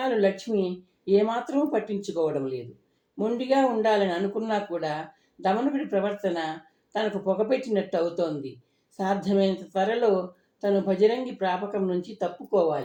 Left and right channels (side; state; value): both; identical; correlation 1.00